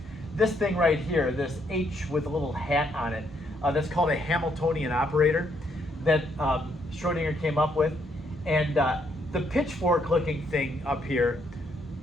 This thing right here, this H with a little hat on it, that's called a Hamiltonian operator that Schrödinger came up with. And the pitchfork looking thing up here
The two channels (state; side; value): normal; both; correlation 0.73